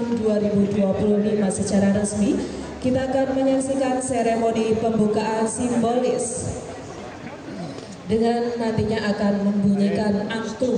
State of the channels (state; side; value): identical; both; correlation 1.00